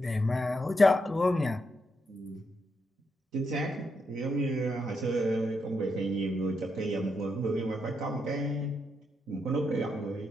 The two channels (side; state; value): both; normal; correlation 0.81